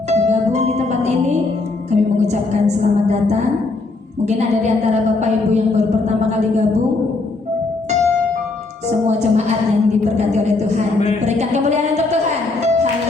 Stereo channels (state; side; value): quieter; right; 3.5 dB